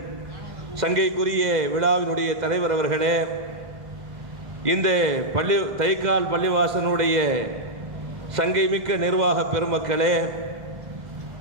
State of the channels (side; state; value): left; late; 2.1 ms